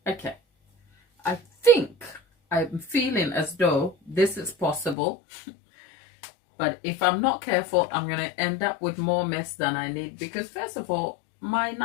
Okay. I think I'm feeling as though this is possible. But if I'm not careful, I'm going to end up with more mess than I need. Because first of all, my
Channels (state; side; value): drops out; right; at 5.0 s